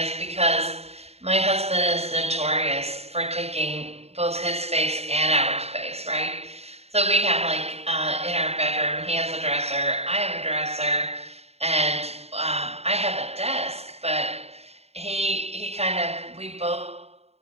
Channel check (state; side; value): late; left; 0.30 ms